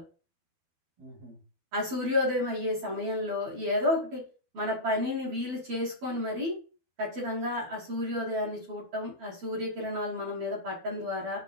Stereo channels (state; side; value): late; left; 12 ms